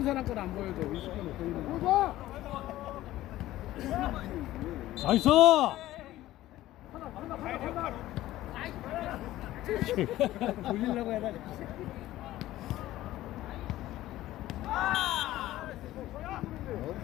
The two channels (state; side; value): quieter; right; 15.3 dB